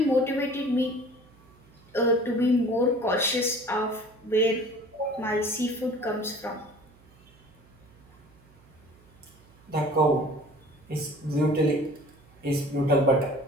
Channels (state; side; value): noise; right; hum, 27 dB below the sound